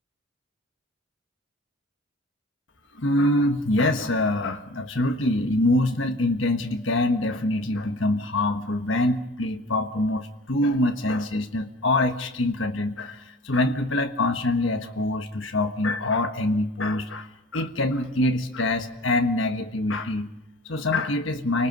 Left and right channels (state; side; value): normal; both; correlation 0.43